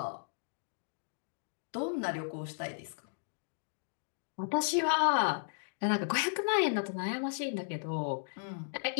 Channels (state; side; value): silent; right; digital silence